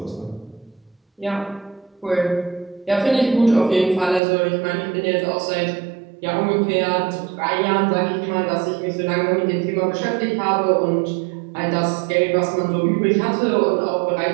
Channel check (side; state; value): left; drops out; at 4.2 s